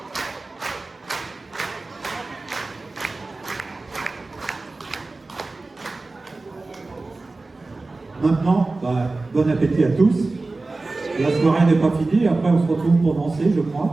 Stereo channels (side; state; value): left; quieter; 3.4 dB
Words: Maintenant, bon appétit à tous. La soirée n'est pas finie, après on se retrouve pour danser, je